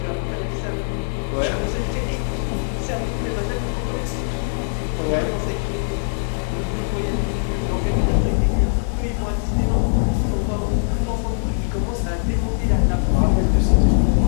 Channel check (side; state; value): right; silent; digital silence